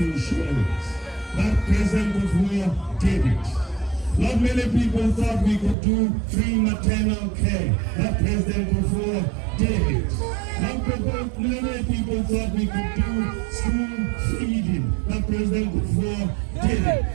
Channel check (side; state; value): left; drops out; at 5.8 s